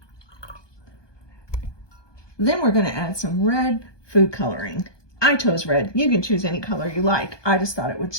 Then we're going to add some red food coloring. I chose red. You can choose any color you like. I just thought it would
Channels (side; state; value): right; late; 1.2 ms